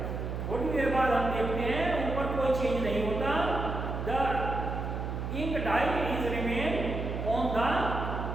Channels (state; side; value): noise; right; hum, 4 dB below the sound